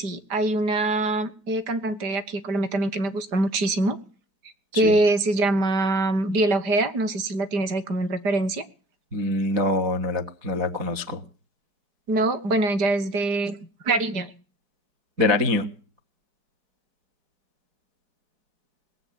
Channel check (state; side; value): late; left; 5.0 ms